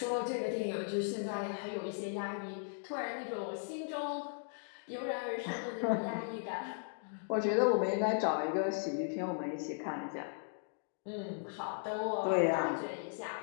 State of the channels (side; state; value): right; silent; digital silence